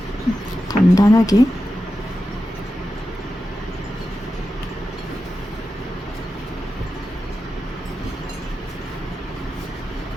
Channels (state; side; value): normal; both; correlation 0.91